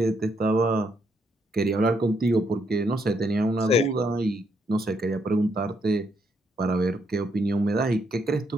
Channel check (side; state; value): both; normal; correlation 0.75